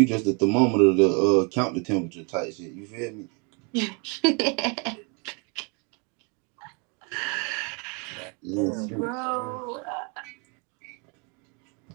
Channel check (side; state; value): left; quieter; 33.9 dB